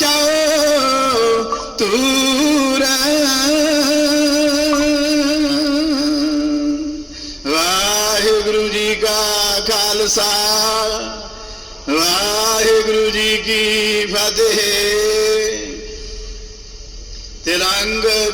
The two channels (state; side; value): identical; both; correlation 1.00